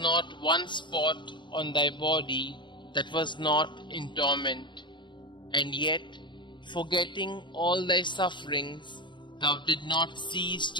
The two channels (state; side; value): late; right; 0.23 ms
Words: one spot on thy body that was not in torment. And yet, forgetting all thy sufferings, thou did not cease